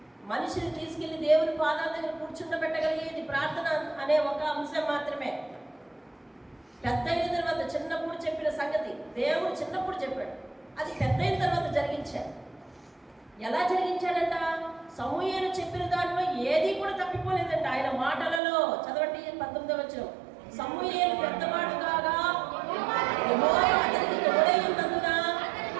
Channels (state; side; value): drops out; left; at 18.4 s